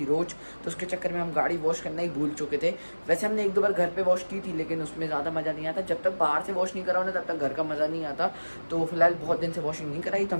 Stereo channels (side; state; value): both; inverted; correlation -1.00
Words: रोज़, तो उसके चक्कर में हम गाड़ी वॉश करना ही भूल चुके थे। वैसे हमने एक दो बार घर पे वॉश की थी, लेकिन उसमें ज़्यादा मज़ा नहीं आता। जब तक बाहर से वॉश नहीं कराओ ना तब तक घर का मज़ा नहीं आता। तो फिलहाल बहुत दिन से वॉशिंग नहीं कराई, तो